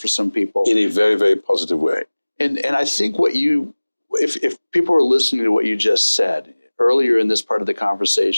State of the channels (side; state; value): both; inverted; correlation -1.00